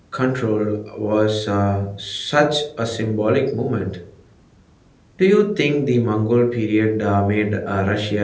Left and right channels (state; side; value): identical; both; correlation 1.00